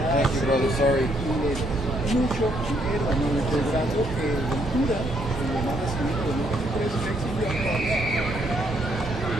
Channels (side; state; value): both; normal; correlation 0.71